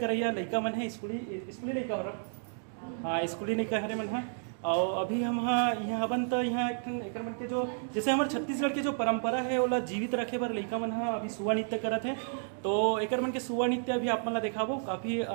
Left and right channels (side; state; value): left; silent; digital silence